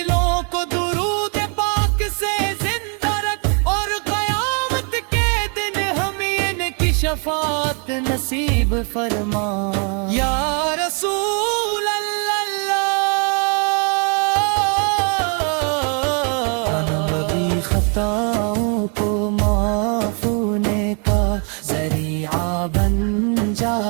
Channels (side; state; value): left; quieter; 37.9 dB